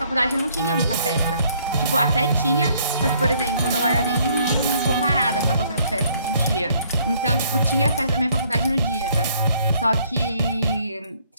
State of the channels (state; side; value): inverted; both; correlation -0.64